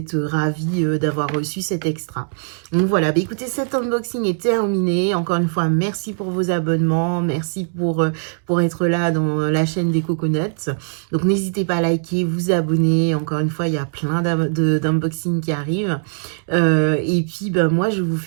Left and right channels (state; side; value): silent; left; digital silence